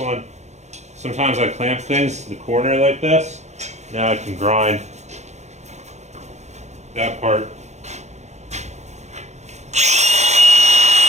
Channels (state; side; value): late; left; 0.33 ms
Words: Sometimes I clamp things to the corner like this. Now I can grind that part.